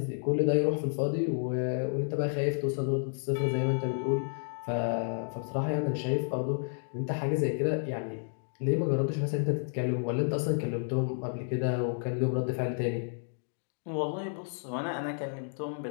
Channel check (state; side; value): silent; right; digital silence